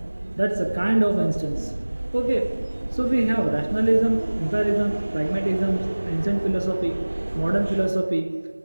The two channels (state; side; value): inverted; both; correlation -1.00